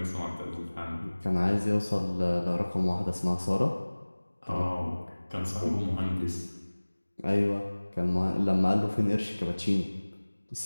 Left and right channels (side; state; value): both; inverted; correlation -1.00